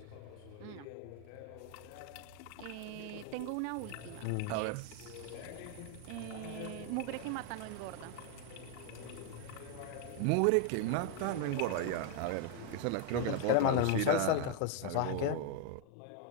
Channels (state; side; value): different; both; correlation 0.01